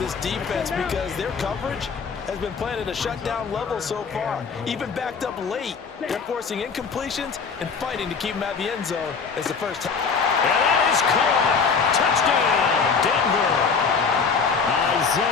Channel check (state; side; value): quieter; right; 5.5 dB